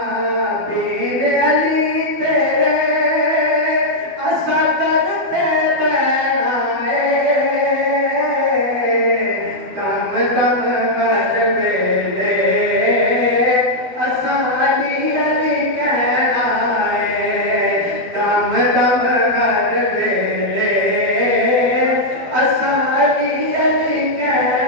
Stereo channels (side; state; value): left; late; 12 ms